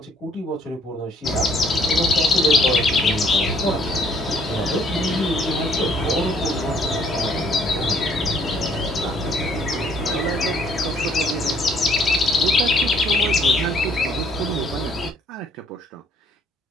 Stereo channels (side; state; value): both; normal; correlation 0.64